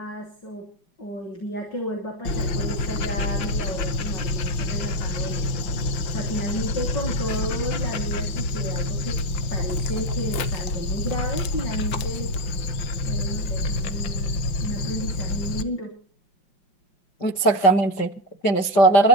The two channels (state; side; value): late; right; 5.7 ms